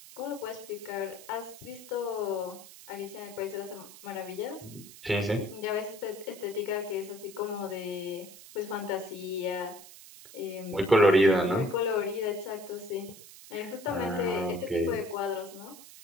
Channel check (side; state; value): right; noise; hiss, 17 dB below the sound